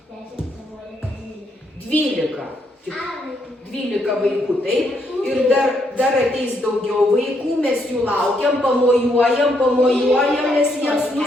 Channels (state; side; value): normal; both; correlation 0.75